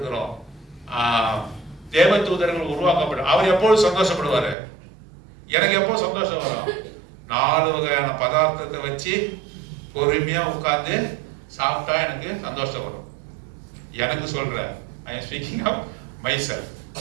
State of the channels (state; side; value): drops out; left; at 4.5 s